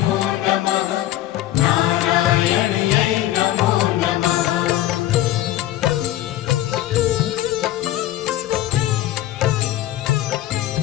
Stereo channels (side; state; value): right; quieter; 14.4 dB